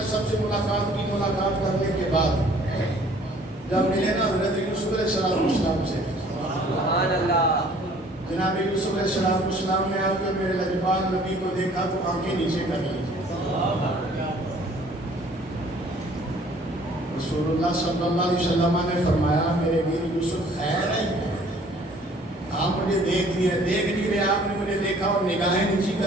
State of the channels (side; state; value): both; normal; correlation 0.56